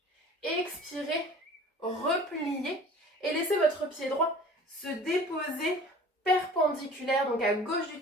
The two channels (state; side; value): normal; both; correlation 0.45